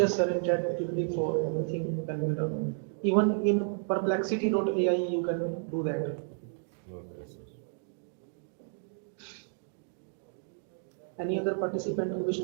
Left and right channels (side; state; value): left; silent; digital silence